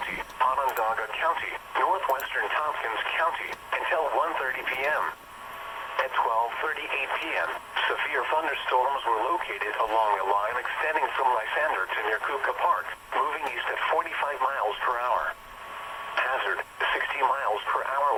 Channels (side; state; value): both; identical; correlation 1.00